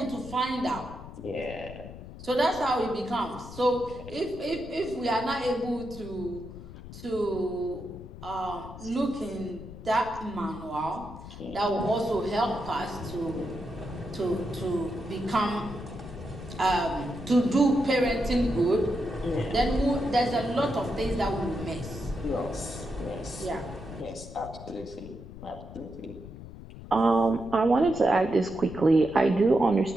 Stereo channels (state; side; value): noise; left; rumble, 13 dB below the sound